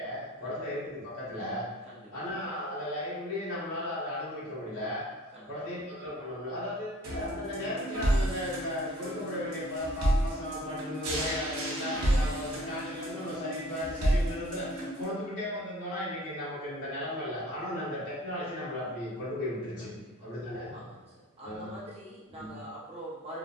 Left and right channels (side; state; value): both; normal; correlation 0.49